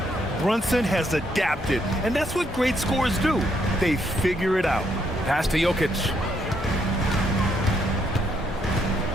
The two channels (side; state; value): both; normal; correlation 0.74